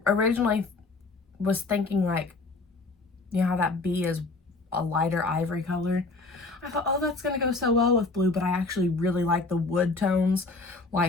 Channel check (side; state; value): right; quieter; 3.6 dB